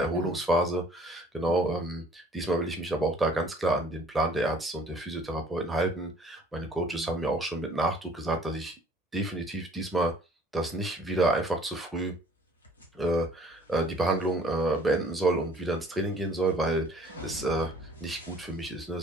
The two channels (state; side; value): normal; both; correlation 0.54